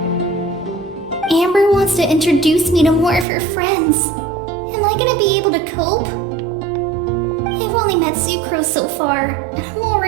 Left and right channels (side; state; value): left; drops out; at 3.2 s